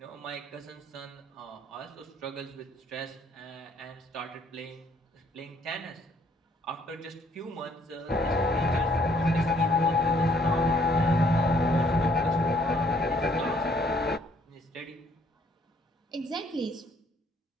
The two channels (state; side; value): normal; both; correlation 0.64